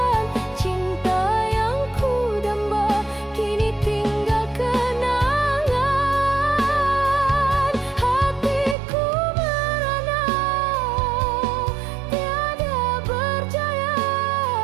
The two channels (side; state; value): left; drops out; at 8.8 s